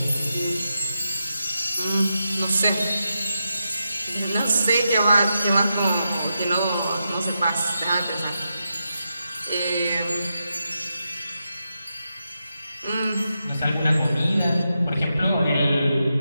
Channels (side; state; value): both; inverted; correlation -0.87